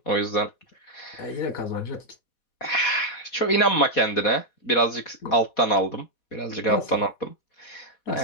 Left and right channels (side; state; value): right; late; 4.1 ms